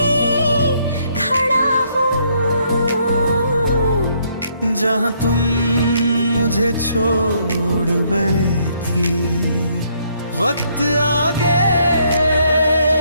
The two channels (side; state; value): both; inverted; correlation -0.70